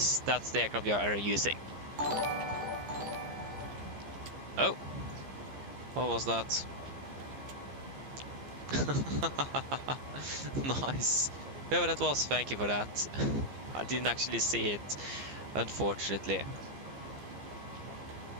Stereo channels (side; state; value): left; late; 15 ms